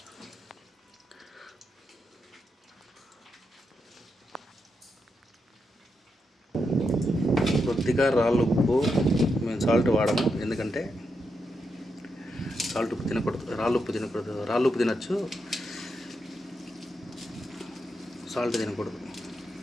కొద్దిగా రాళ్ళు ఉప్పు, మేము సాల్ట్ వాడము ఎందుకంటే సాల్ట్ ఉప్పు తినకూడదు, రాళ్ళు ఉప్పు తినకూడదు. రాళ్ళు ఉప్పు తినచ్చు, సాల్ట్ తినకూడదు.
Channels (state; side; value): normal; both; correlation 0.84